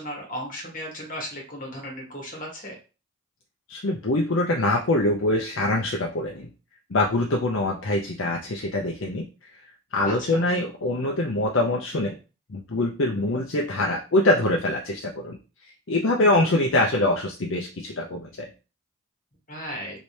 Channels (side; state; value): both; normal; correlation 0.14